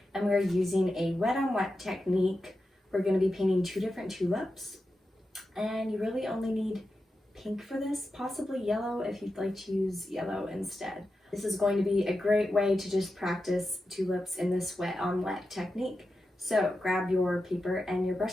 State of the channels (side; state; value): both; normal; correlation 0.90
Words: and we are using a wet on wet technique. We're going to be painting two different tulips, and you really only need pink for this, possibly yellow if you'd like to use yellow instead. This is going to be a great way to just practice tulips in this wet on wet technique. So grab your paper and your